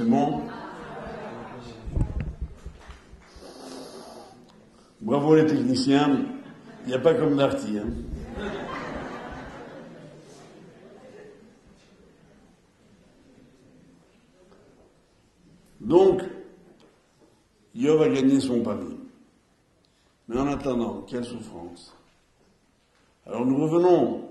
bon. Bravo les techniciens. Il n'y a pas comme Darty. Hein. Donc, Yov a gagné son pari. Mais en attendant, quelle souffrance. Alors nous revenons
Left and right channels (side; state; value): both; identical; correlation 1.00